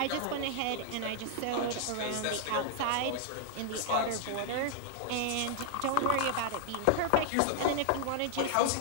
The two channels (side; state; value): both; different; correlation -0.01